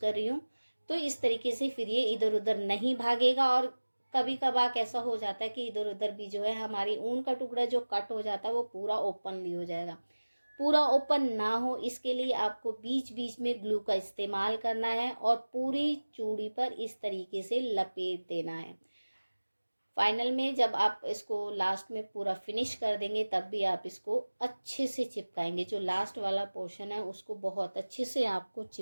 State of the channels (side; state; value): both; inverted; correlation -1.00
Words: रही हूँ। तो इस तरीके से फिर ये इधर उधर नहीं भागेगा। और कभी कभार ऐसा हो जाता है कि इधर उधर भी जो है हमारी ऊन का टुकड़ा जो कट हो जाता है वो पूरा ओपनली हो जाएगा। पूरा ओपन ना हो इसके लिए आपको बीच बीच में ग्लू का इस्तेमाल करना है और पूरी चूड़ी पर इस तरीके से लपेट देना है। फाइनल में जब आप इसको लास्ट में पूरा फिनिश कर देंगे तब भी आप इसको अच्छे से चिपकाएंगे। जो लास्ट वाला पोर्शन है उसको बहुत अच्छे से आपको